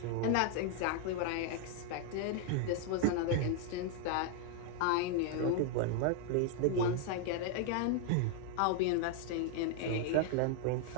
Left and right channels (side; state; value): both; different; correlation 0.00